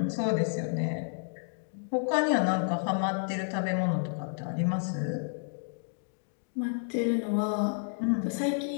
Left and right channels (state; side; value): silent; right; digital silence